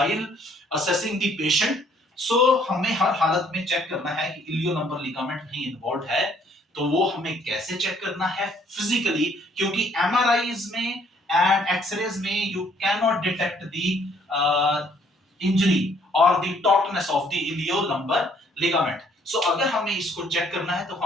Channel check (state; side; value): normal; both; correlation 0.64